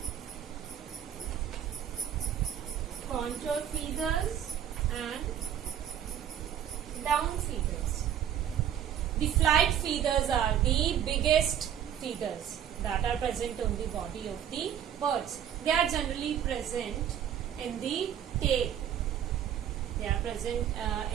contour feathers, and down feathers. The flight feathers are the biggest feathers that are present on the body of the birds. They are generally present in the tail. They are present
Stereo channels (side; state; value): left; quieter; 9.7 dB